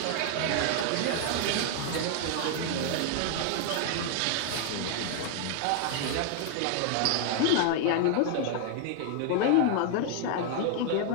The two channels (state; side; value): different; both; correlation 0.00